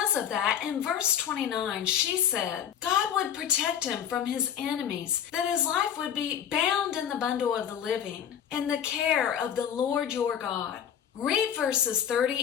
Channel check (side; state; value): right; quieter; 9.1 dB